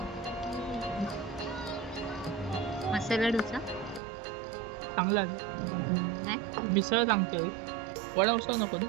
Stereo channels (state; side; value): drops out; left; at 4.0 s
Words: मसाला डोसा, चांगला आहे. मिसळ सांगते, वडा उसळ नको ना.